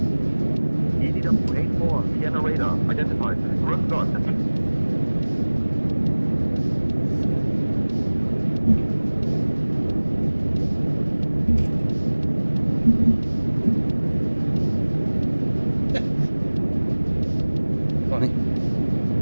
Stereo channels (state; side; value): inverted; both; correlation -1.00